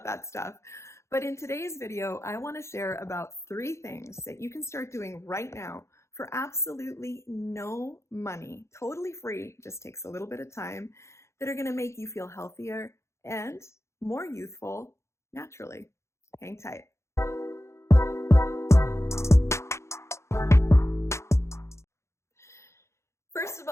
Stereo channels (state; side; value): late; right; 0.13 ms